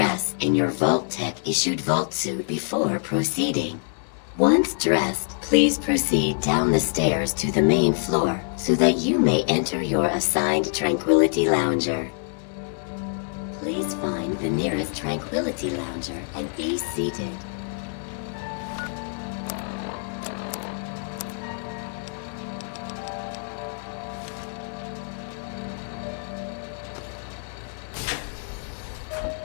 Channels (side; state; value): right; silent; 57 dB below the other